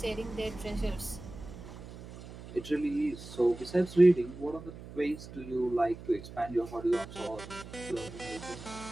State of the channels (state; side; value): noise; right; hum, 14 dB below the sound